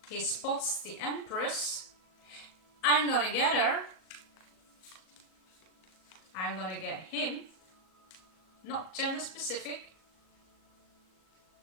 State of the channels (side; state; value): right; late; 38 ms